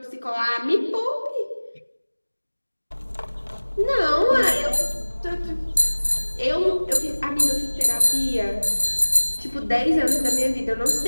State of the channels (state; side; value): inverted; both; correlation -1.00